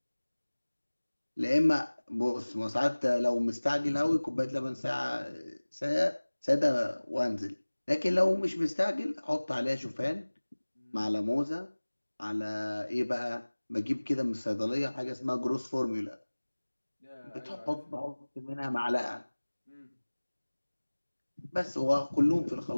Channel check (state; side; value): inverted; both; correlation -1.00